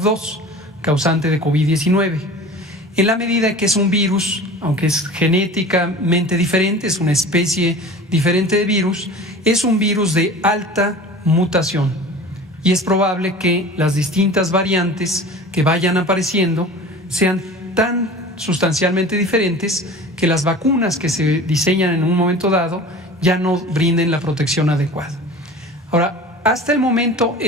causante de COVID-19, en la medida que es un virus, aunque es genéticamente diferente, es una especie diferente de virus, es un virus de alta mutación y es probable que las distintas variantes que vayan apareciendo sean tan sustancialmente diferentes que las vacunas que se diseñan en un momento dado ya no brinden la protección adecuada. Ahora, hasta el momento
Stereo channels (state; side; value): normal; both; correlation 0.39